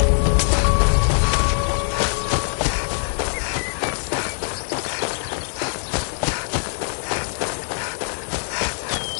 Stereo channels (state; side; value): silent; right; 58 dB below the other